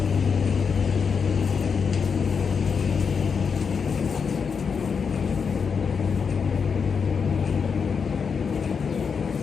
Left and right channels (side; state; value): right; quieter; 6.0 dB